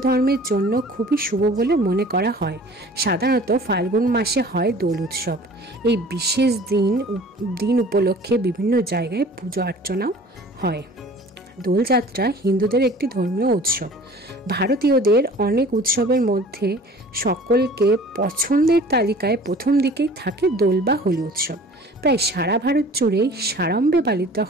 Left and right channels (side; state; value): both; normal; correlation 0.46